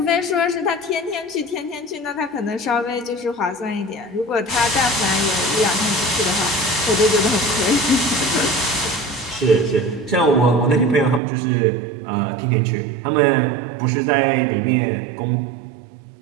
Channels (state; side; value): drops out; left; at 11.2 s